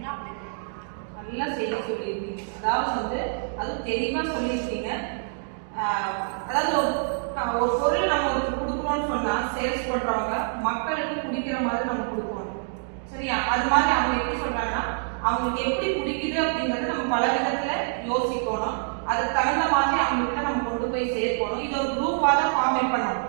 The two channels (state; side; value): silent; left; digital silence